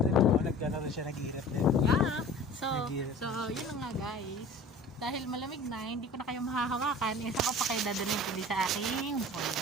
mo, naggano rin siya, nag-iirap din. Yeah. So Nag-iirap yun na nga guys. Dahil malamig na, hindi ko na kayo mahahawakan. Isa ko pa kayo dadalhin ko sa aking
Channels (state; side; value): normal; both; correlation 0.42